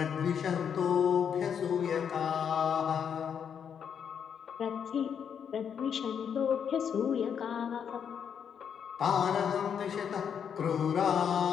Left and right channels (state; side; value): quieter; right; 7.7 dB